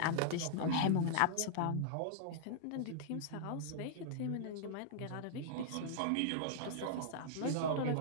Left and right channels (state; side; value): different; both; correlation -0.01